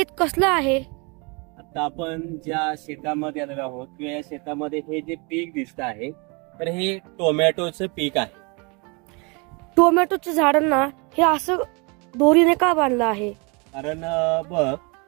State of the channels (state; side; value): quieter; left; 30.5 dB